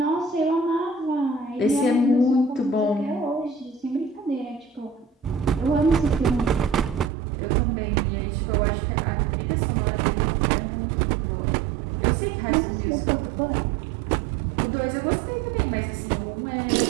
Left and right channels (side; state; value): left; drops out; at 7.1 s